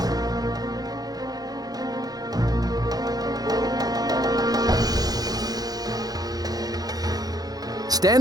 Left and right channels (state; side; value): late; left; 0.19 ms